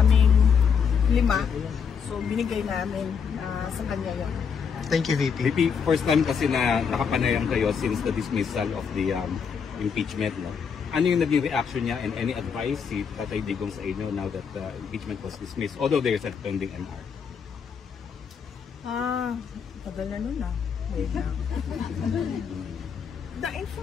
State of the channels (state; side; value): quieter; right; 6.5 dB